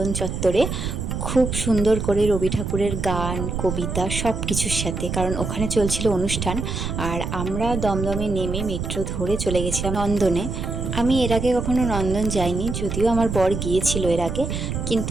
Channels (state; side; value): noise; right; rumble, 4 dB below the sound